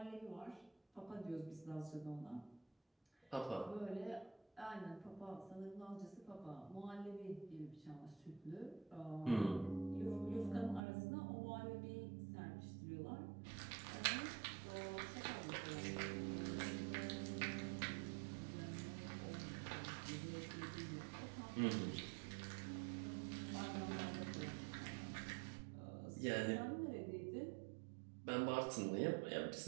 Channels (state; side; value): drops out; left; at 10.8 s